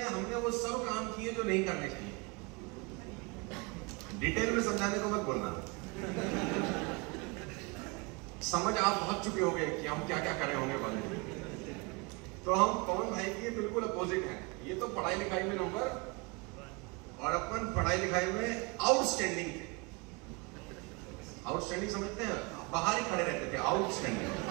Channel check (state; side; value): quieter; left; 28.0 dB